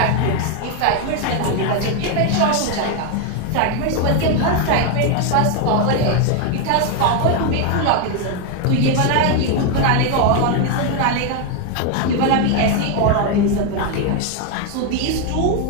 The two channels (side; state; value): both; different; correlation 0.01